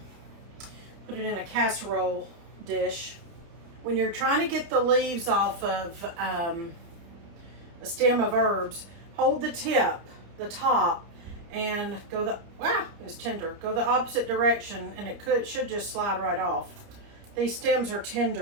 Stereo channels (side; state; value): left; late; 30 ms